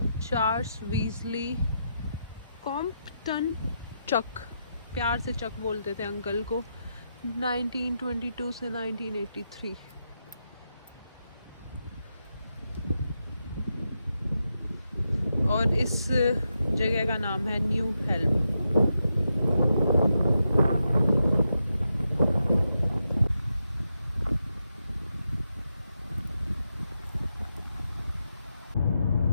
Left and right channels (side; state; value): both; inverted; correlation -0.85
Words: Charles Weasley Compton Chuck, प्यार से चक बोलते थे अंकल को, 1922 से 1983। और इस जगह का नाम है न्यू हेल्म।